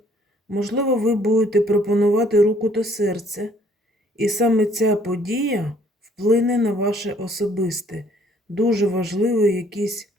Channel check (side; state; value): both; normal; correlation 0.61